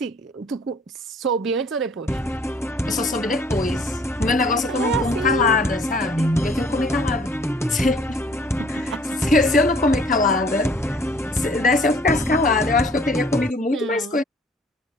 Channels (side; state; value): both; normal; correlation 0.56